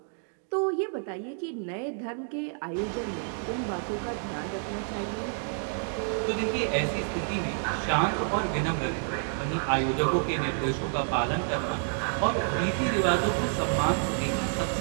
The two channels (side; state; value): left; silent; 59 dB below the other